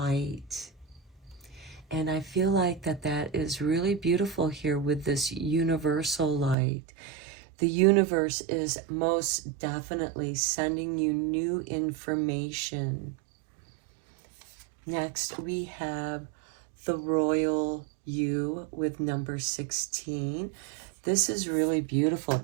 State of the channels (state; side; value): drops out; left; at 6.6 s